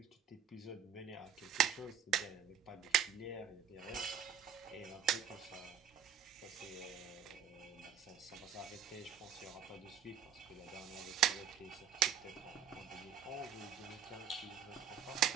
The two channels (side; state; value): left; quieter; 8.3 dB